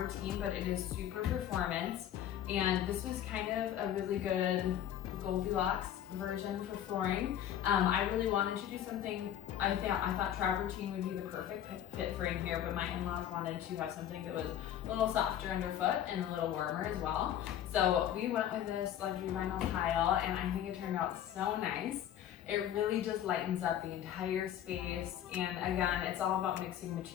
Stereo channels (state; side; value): quieter; right; 10.8 dB